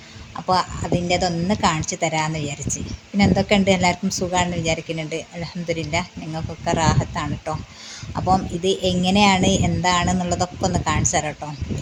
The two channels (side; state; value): both; identical; correlation 1.00